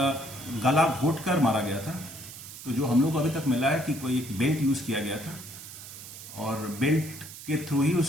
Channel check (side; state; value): right; noise; hiss, 13 dB below the sound